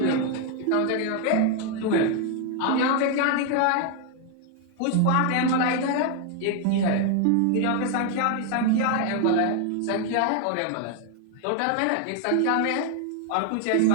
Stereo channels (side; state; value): both; different; correlation 0.00